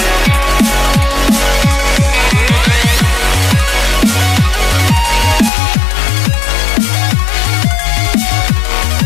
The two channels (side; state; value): right; drops out; at 5.5 s